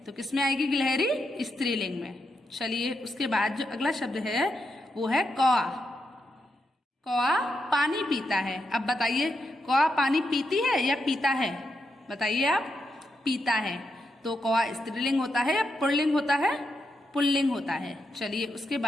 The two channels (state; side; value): normal; both; correlation 0.84